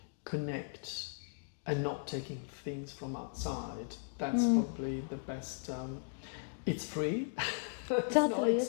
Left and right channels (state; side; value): silent; right; digital silence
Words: connect, and not taking things from outside, that's probably the best. It's free, it's not